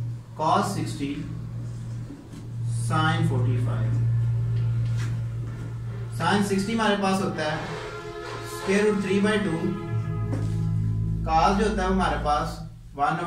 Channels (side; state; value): both; identical; correlation 1.00